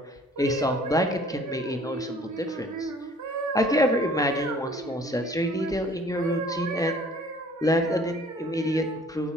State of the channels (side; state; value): both; normal; correlation 0.54